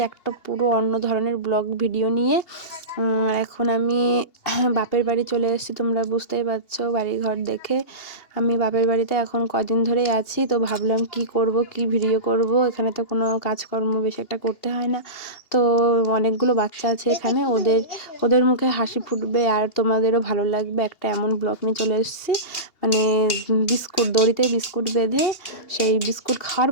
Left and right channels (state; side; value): late; right; 2.8 ms